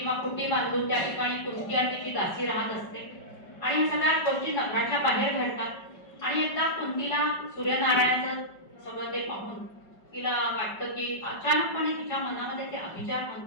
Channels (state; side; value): late; right; 5.3 ms